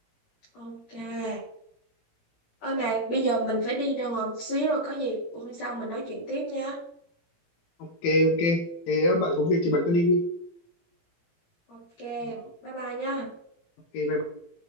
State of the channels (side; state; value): right; late; 18 ms